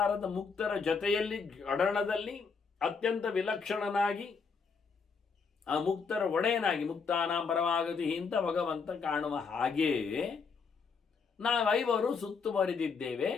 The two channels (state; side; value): quieter; right; 5.3 dB